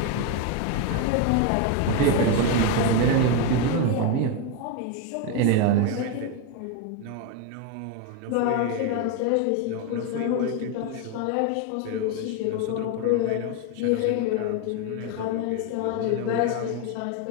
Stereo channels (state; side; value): different; both; correlation 0.02